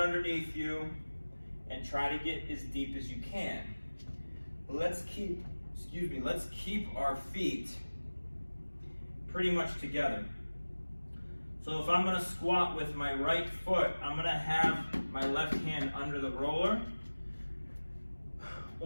you, and try to get as deep as you can. Let's keep our feet pretty much together. So if I'm gonna squat with my right foot, I'm gonna have my left hand under the roller,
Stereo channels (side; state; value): both; inverted; correlation -1.00